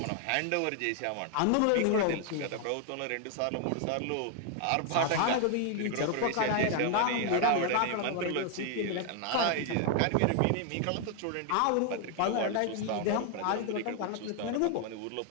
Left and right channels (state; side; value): different; both; correlation 0.00